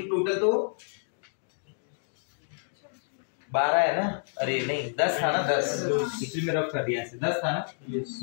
टोटल तो 12 है ना? अरे नहीं 10 था ना? 10 पिछले में रफ कर दिया ऐसे। 10 था ना?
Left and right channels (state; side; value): silent; right; 59 dB below the other